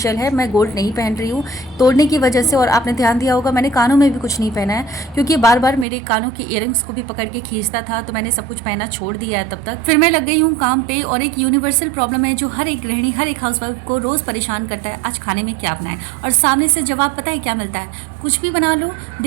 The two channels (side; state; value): left; drops out; at 5.9 s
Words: है, मैं गोल्ड नहीं पहन रही हूँ तोड़ने की वजह से। और आपने ध्यान दिया होगा मैंने कानों में भी कुछ नहीं पहना है, क्योंकि बार बार मेरे कानों के इयरिंग्स को भी पकड़ के खींचता था, तो मैंने सब कुछ पहना छोड़ दिया है तब तक। फिर मैं लग गई हूँ काम पे, और एक यूनिवर्सल प्रॉब्लम है जो हर एक गृहिणी, हर एक हाउसवाइफ को रोज परेशान करता है, आज खाने में क्या बनाए। और सामने से जवाब पता है क्या मिलता है, कुछ भी बना लो,